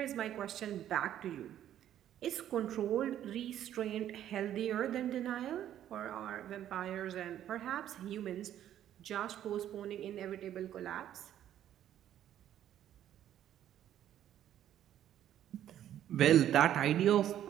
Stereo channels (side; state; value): left; quieter; 11.2 dB